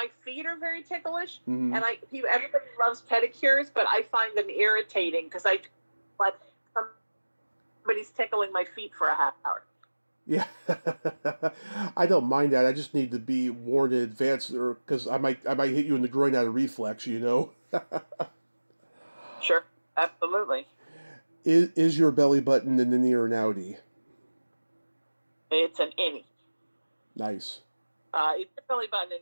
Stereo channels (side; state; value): both; inverted; correlation -1.00